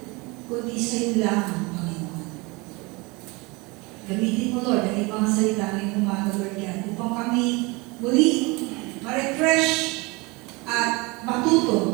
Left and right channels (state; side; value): quieter; left; 26.0 dB